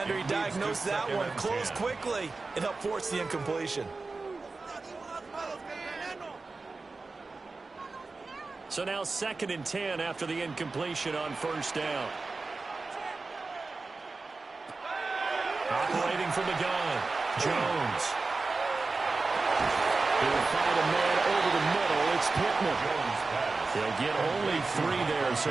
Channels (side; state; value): left; quieter; 3.8 dB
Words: He diagnosed that one, closed quickly, and helped force the incompletion. So now 2nd and 10 after the incompletion on 1st down. Operating from the gun, Jones. He'll find a man over the middle. It's Pittman. They'll get only 3 there, so